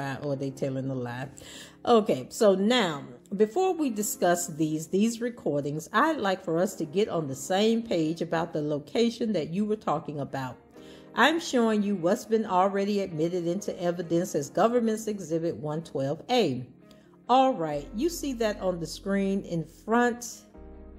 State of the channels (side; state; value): both; identical; correlation 1.00